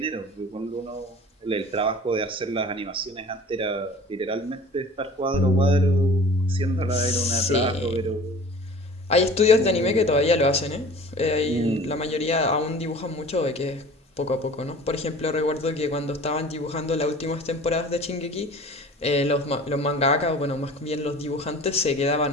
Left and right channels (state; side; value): normal; both; correlation 0.43